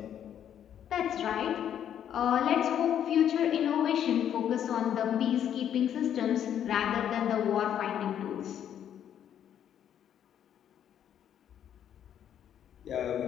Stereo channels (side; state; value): right; quieter; 9.7 dB